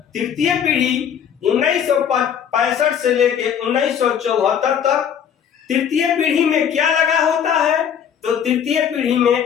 तृतीय पीढ़ी 1965 से लेके 1974 तक। तृतीय पीढ़ी में क्या लगा होता है, तो तृतीय पीढ़ी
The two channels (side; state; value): right; quieter; 8.3 dB